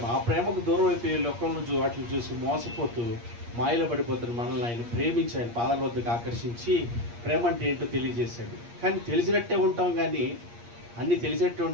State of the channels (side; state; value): left; late; 8.5 ms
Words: ఆ ప్రేమకు దూరం అయిపోయి లోకంలో వాటిని చూసి మోసపోతూ మాయలో పడిపోతున్న మనల్ని ఆయన ప్రేమించి ఆయన పాదాల వద్దకు ఆకర్షించి ప్రేమ అంటే ఏంటో తెలియజేశాడు. కానీ తెలిసినట్టే ఉంటాం కానీ, అన్నీ తెలిసినట్టే